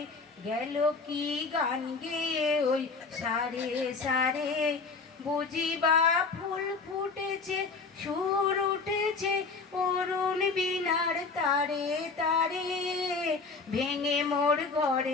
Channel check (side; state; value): right; quieter; 4.4 dB